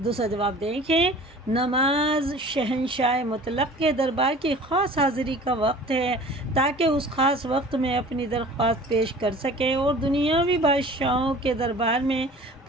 دوسرا جواب دیکھیں، نماز شہنشاہ مطلق کے دربار کی خاص حاضری کا وقت ہے، تاکہ اس خاص وقت میں اپنی درخواست پیش کر سکے، اور دنیاوی بادشاہوں کے دربار میں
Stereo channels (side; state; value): both; normal; correlation 0.44